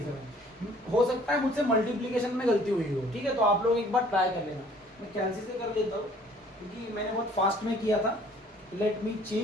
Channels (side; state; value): both; normal; correlation 0.56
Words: हो सकता है मुझसे मल्टीप्लिकेशन में गलती हुई हो। ठीक है, तो आप लोग एक बार ट्राई कर लेना। मैं कैंसिल से कर लेता हूँ क्योंकि मैंने बहुत फास्ट में किया था। Let me